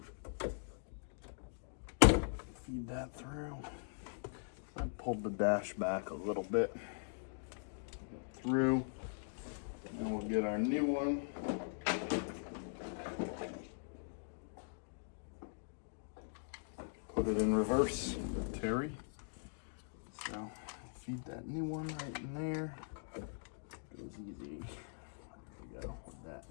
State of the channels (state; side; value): silent; right; digital silence